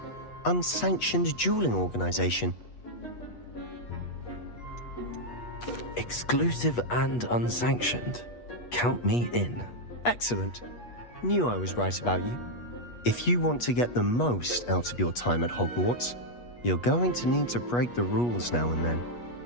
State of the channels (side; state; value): right; late; 8.3 ms